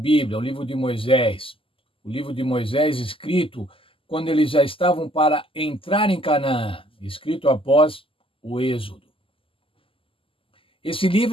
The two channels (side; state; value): right; late; 0.26 ms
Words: o livro de Moisés. O livro de Moisés, escrito quando eles já estavam para entrar em Canaã, escrito após o Êxodo. Esse